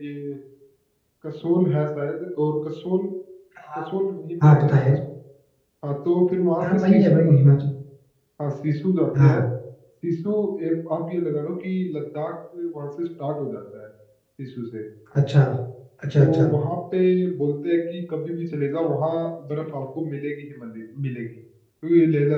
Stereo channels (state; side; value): identical; both; correlation 1.00